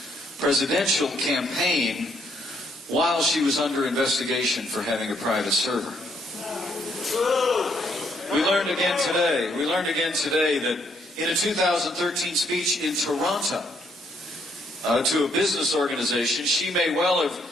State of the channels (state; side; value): normal; both; correlation 0.71